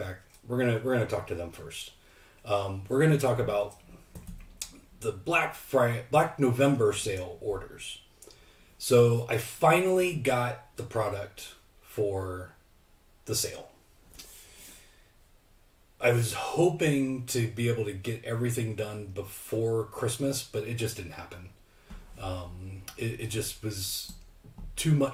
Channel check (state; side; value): identical; both; correlation 1.00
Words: we're gonna talk to them first. We're gonna talk about the Black November sale orders. So I finally got the product for the sale. I was hoping to be able to get everything done before Christmas, but it just didn't happen. It just was too